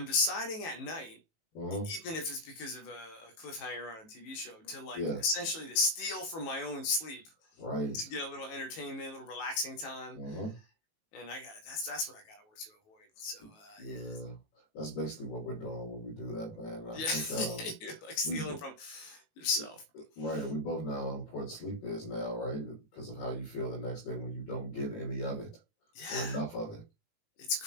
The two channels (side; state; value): right; late; 19 ms